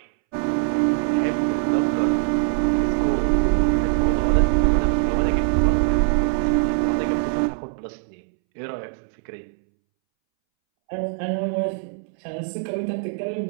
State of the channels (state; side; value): silent; left; 64 dB below the other